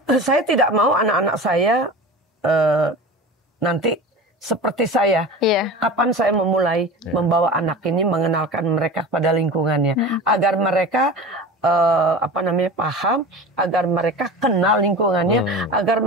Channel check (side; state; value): both; normal; correlation 0.32